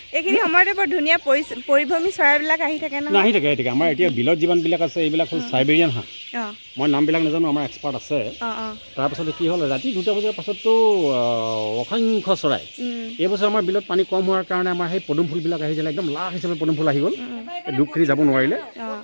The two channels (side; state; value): both; inverted; correlation -1.00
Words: এইখিনি সময়তে বৰ ধুনীয়া পৰিভ্ৰমী চৰাইবিলাক আহি থাকে নহয়। আহি থাকে আমাৰ এতিয়া বিলত যিমানবিলাক আছে এইবিলাক হ'ল চাইবেৰিয়ান হাঁহ। মই নামবিলাক নাজানো, আমাৰ এক্সপাৰ্ট আছে। তাৰপাছতে কি হ'ল ৰাতি 2টা বজাৰ পাছততো অসংখ্য চৰাই। এইবছৰ আমাৰ বিলত পানী কম হোৱাৰ কাৰণে আমাৰ সেই পদুম ফুলবিলাক আহিছিলে, একদম লাখ হিচাপে পদুম ফুল আহি গ'ল। দুখখিনি যাব নোৱাৰিলে,